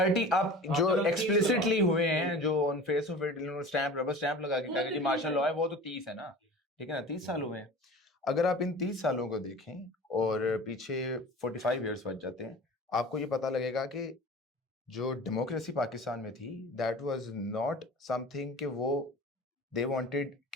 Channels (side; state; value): both; normal; correlation 0.38